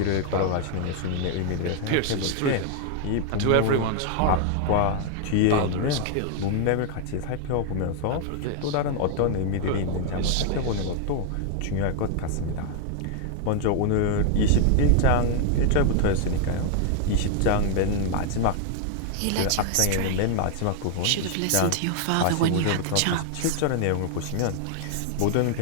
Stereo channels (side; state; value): both; different; correlation 0.00